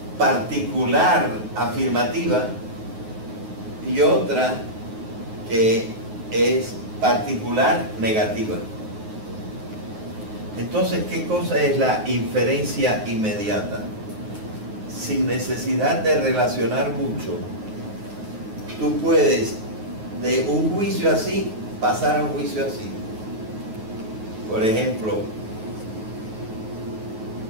particular afirmativa y otra que es particular negativa. Entonces, ¿qué cosa es la inferencia inmediata? Sin necesidad de relacionar mucho, tú puedes de un juicio así pasar a un juicio así. Por ejemplo,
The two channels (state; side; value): late; left; 9.3 ms